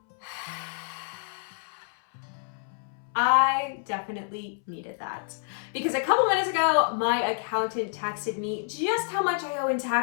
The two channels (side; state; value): right; silent; 59 dB below the other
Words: I definitely needed that because a couple minutes ago, my accountant texted me just how much I owe in